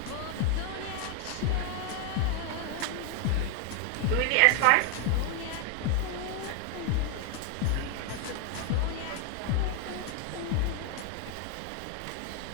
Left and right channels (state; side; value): different; both; correlation 0.01